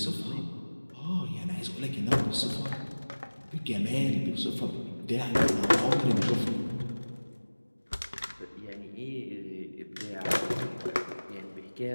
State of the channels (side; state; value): both; inverted; correlation -1.00